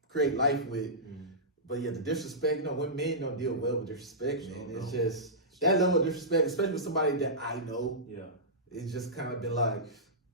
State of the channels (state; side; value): normal; both; correlation -0.16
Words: create life with. But the disrespect, when men don't deal well with disrespect, man. It's just that level of disrespect, especially with somebody that I know. Yeah, it's just kind of been like,